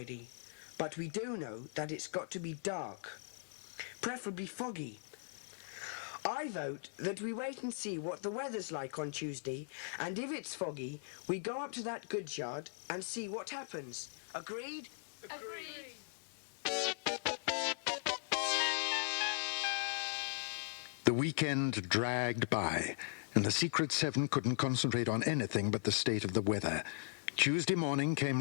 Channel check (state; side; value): silent; right; digital silence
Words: but we do know that it's got to be dark, preferably foggy. I vote that we wait and see what the weather's like on Tuesday, and if it's foggy, we go up to that goods yard and see what happens. Agreed? Agreed. The weekend dragged by, and the Secret Seven couldn't concentrate on anything but the state of the weather. Tuesday morning came